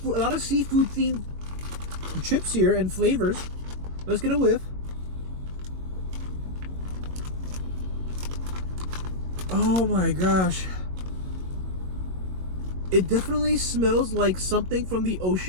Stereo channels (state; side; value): late; left; 22 ms